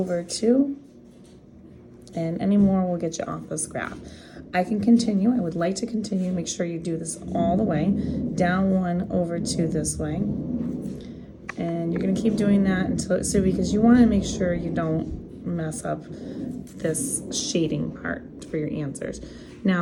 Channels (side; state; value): both; identical; correlation 1.00